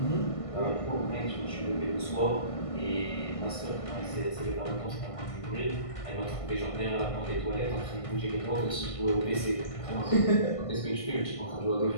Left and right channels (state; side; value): late; right; 1.5 ms